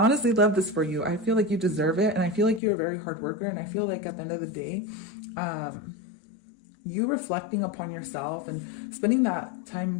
honestly love this for you. I feel like you deserve it, and I feel like you're a very hard worker, and I feel like at the end of the day, you reflecting upon yourself and spending that time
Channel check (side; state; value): right; drops out; at 2.6 s